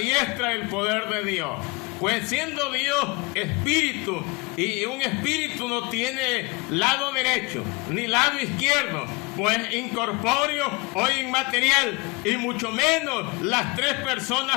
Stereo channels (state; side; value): quieter; right; 26.1 dB